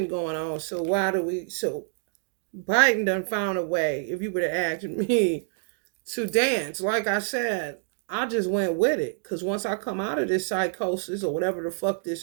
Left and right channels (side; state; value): left; silent; digital silence